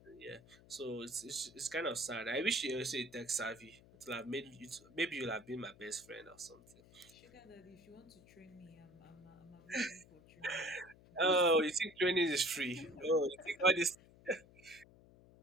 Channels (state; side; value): noise; left; hum, 24 dB below the sound